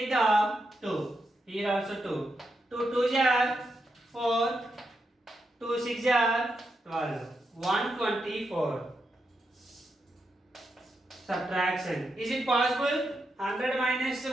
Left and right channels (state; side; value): normal; both; correlation 0.84